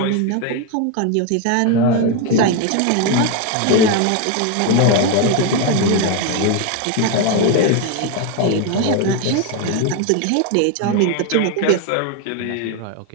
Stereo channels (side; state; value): both; different; correlation 0.02